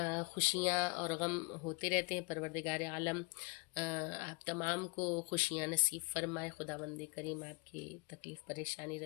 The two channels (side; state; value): right; quieter; 31.9 dB